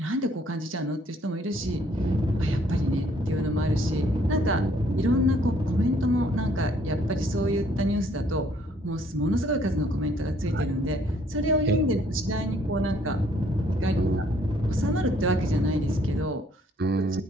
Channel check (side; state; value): both; normal; correlation 0.64